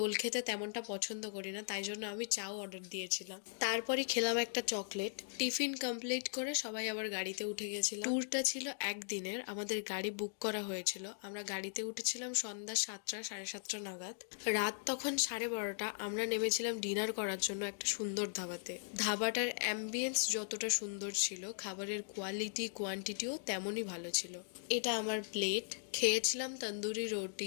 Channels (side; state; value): right; silent; digital silence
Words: খেতে তেমনটা পছন্দ করি না, তাই জন্য আমি চাও অর্ডার দিয়েছিলাম। তারপরে খেলাম একটা চকলেট। টিফিন কমপ্লিট করে সবাই আবার গাড়িতে উঠে গেছিলাম। ট্যুরটা ছিল একদিনের, আমাদের গাড়ি বুক করা হয়েছিল। আমরা গাড়িতে উঠেছিলাম সন্ধ্যা 7টা 7:30 নাগাদ। রাত তখন 12:30। আমরা নেমেছিলাম ডিনার করার জন্য একটা সুন্দর ধাবাতে। ধাবাটার অ্যাম্বিয়েন্স যতটা সুন্দর ছিল, খাবারের কোয়ালিটি কোয়ান্টিটিও তেমনই ভালো ছিল। এটা আমার প্লেট। খেয়েছিলাম তন্দুরি